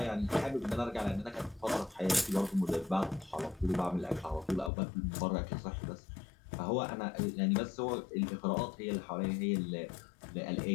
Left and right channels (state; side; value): drops out; right; at 4.7 s